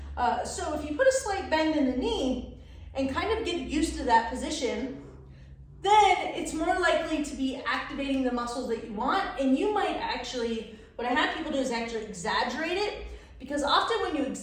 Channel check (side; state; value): both; identical; correlation 1.00